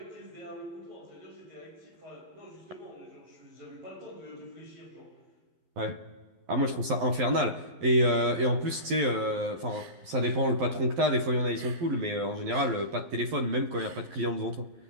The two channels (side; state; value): left; late; 12 ms